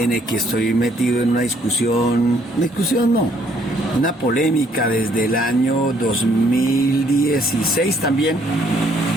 el que estoy metido en una discusión no, una polémica desde el año 2016 también,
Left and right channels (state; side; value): normal; both; correlation 0.66